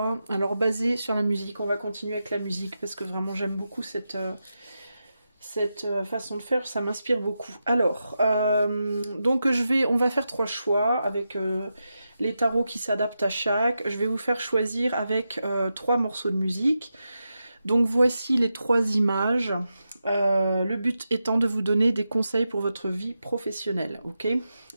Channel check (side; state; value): both; inverted; correlation -0.89